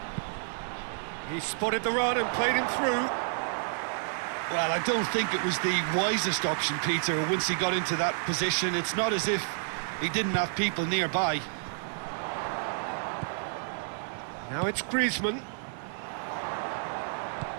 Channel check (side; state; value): left; silent; digital silence